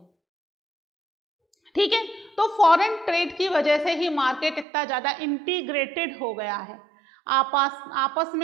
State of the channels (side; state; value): left; drops out; at 4.7 s